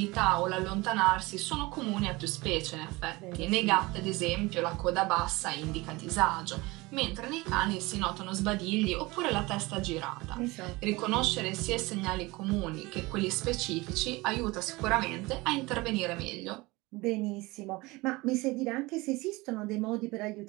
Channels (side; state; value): left; quieter; 22.4 dB